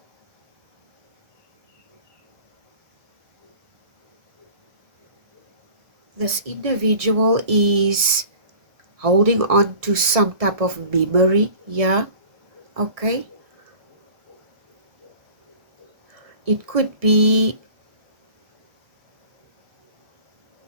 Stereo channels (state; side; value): late; left; 1.6 ms